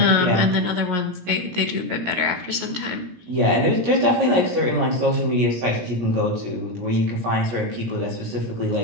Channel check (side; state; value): left; late; 16 ms